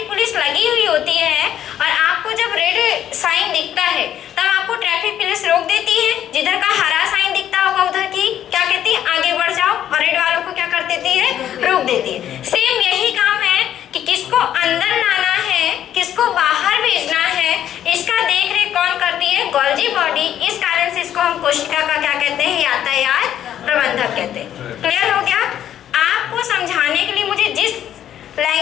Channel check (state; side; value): quieter; right; 10.8 dB